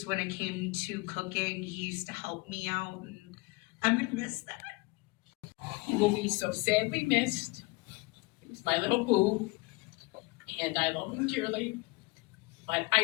when it came to cooking. He used to help me out, and I'm gonna miss that. He will be so sadly missed. He was my little boo, and I love him dearly, but I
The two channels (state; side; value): quieter; right; 25.0 dB